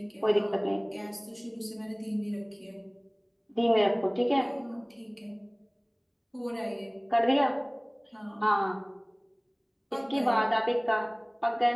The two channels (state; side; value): identical; both; correlation 1.00